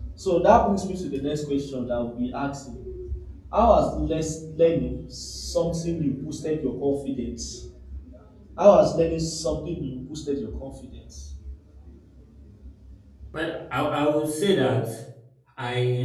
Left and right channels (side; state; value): both; identical; correlation 1.00